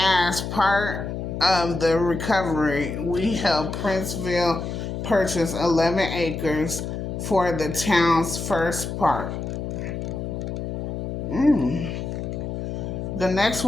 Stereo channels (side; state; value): left; noise; hum, 5 dB below the sound